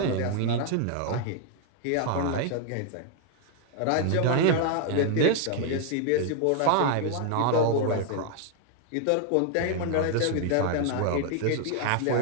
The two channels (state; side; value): different; both; correlation 0.00